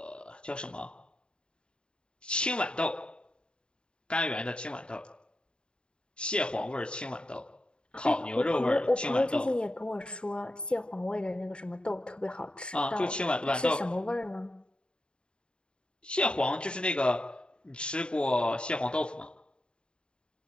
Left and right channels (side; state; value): right; late; 0.052 ms